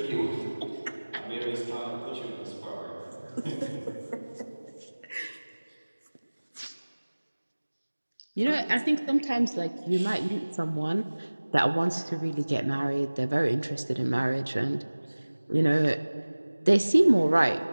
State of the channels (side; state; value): both; inverted; correlation -1.00